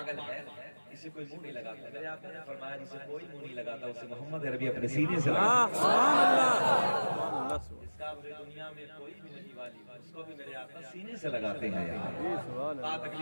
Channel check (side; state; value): both; inverted; correlation -1.00